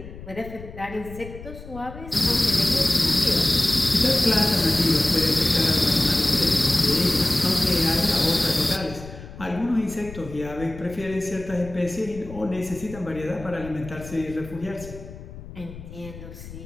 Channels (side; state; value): left; noise; rumble, 14 dB below the sound